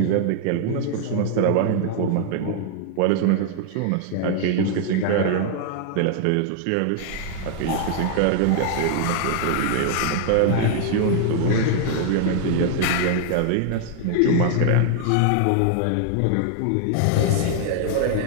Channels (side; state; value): both; different; correlation 0.00